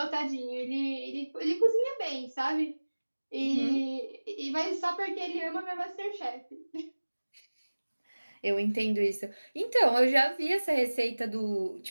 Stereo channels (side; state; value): both; inverted; correlation -1.00